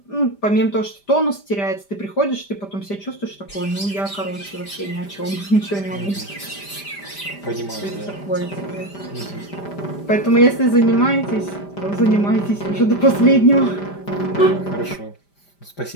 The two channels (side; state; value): right; late; 5.0 ms